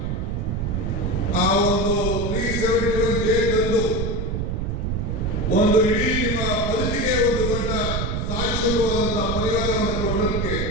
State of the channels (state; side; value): noise; right; rumble, 1 dB below the sound